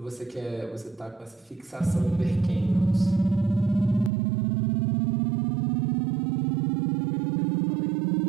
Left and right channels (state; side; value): drops out; left; at 4.1 s